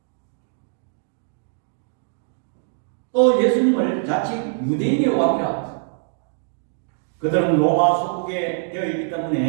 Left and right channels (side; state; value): left; silent; 63 dB below the other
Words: 또 예수님을 자칭 유대인의 왕이라 그들은 로마 소국에 되어 있기